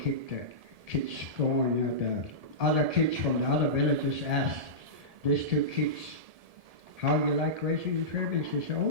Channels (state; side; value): late; left; 1.7 ms